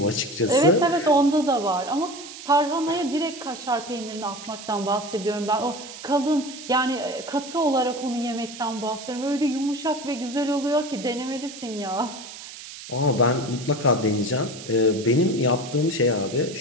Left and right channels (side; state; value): right; noise; hiss, 13 dB below the sound